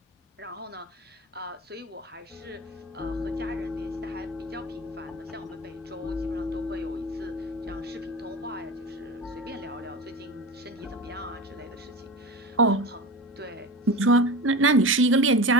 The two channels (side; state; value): both; normal; correlation 0.29